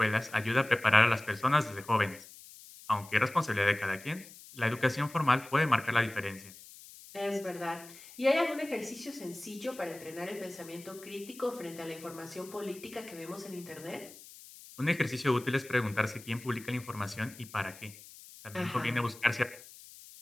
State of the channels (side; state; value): left; noise; hiss, 18 dB below the sound